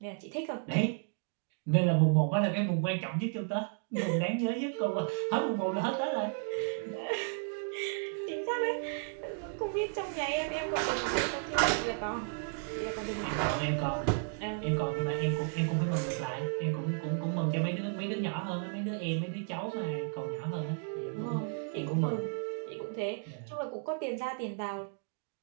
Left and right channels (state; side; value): silent; left; 55 dB below the other